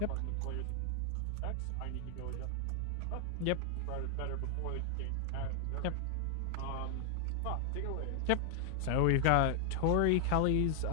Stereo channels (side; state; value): both; different; correlation 0.00